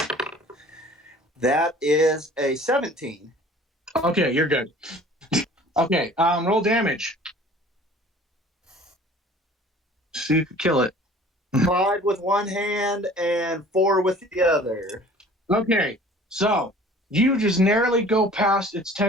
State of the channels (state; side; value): normal; both; correlation 0.48